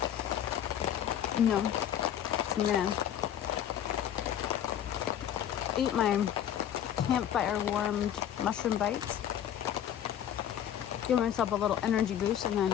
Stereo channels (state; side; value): quieter; right; 10.1 dB